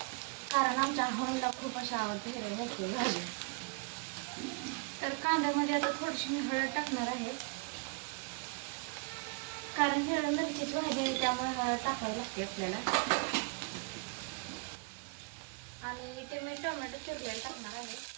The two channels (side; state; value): left; quieter; 33.4 dB